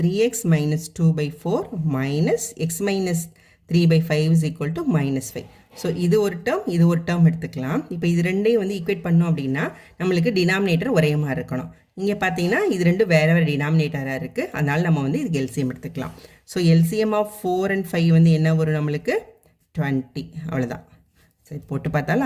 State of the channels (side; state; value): both; identical; correlation 1.00